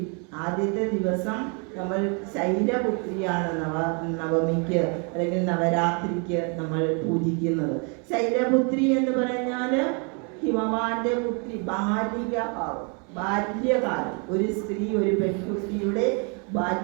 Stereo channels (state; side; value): quieter; left; 36.2 dB